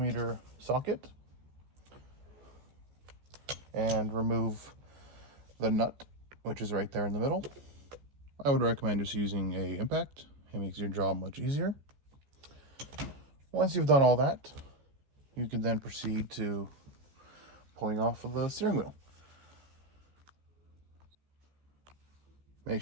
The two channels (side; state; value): left; late; 14 ms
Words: socket and remove the nut, which is right there in the middle. I would recommend just using a impact. It makes your job much easier. Once you've done all that, you can then proceed to pulling off of the steering wheel. Make